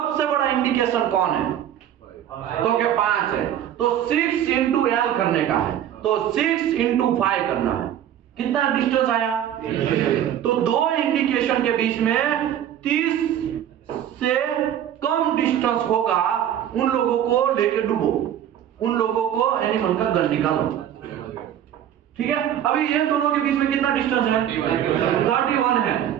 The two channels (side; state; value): left; quieter; 10.6 dB